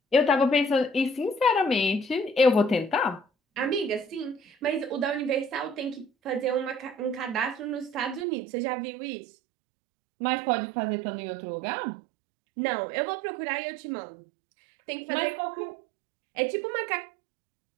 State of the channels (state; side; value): drops out; left; at 8.2 s